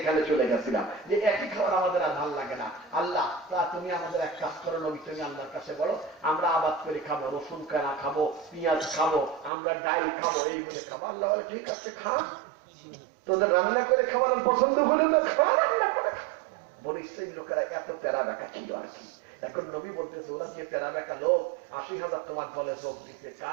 এখানে চলে গেছিলাম, যে একই খাবার আমাদের আর ভালো লাগে না। আল্লাহ তা তুমি আমাদের এক কাজ করো নবী, তুমি আল্লাহর কাছে বলো আমরা আবাদ করে খাবো, রসুন কানা খাবো, পেঁয়াজ খাবো, আমরা ডাল খাবো, এই বলে খাবো। আল্লাহ বলে ঠিক আছে খা, তোদের রান্না করে খাওয়ানোর পছন্দ হলে তো খাওয়া, রান্না করে খা। বলে সেই লোকেরা এত প্যারা বেকা ছিল আর কি। এখন নবী বলতেছে ওরা যে প্যারা বেকা লোক 80,000 তোমার দলে যোগ দিতে,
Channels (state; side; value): drops out; left; at 9.5 s